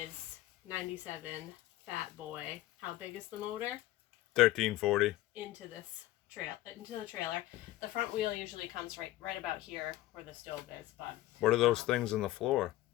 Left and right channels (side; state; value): right; quieter; 16.2 dB